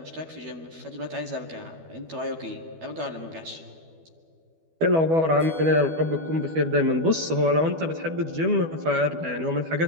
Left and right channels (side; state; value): left; late; 12 ms